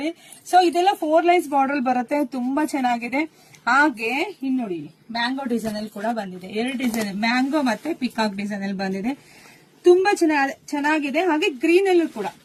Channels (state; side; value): identical; both; correlation 1.00